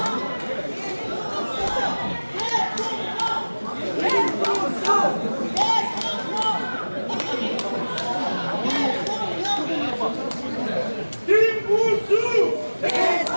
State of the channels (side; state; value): both; inverted; correlation -1.00